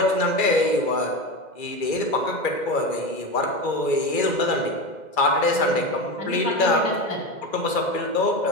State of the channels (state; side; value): late; right; 2.3 ms